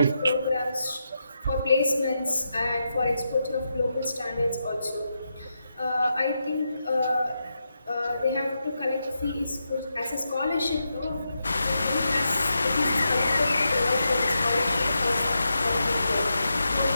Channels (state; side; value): inverted; both; correlation -0.86